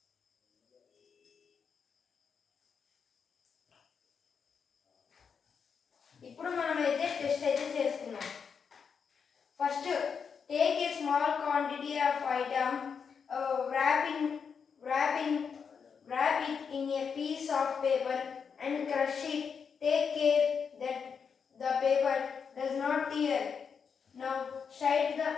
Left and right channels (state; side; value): quieter; right; 6.3 dB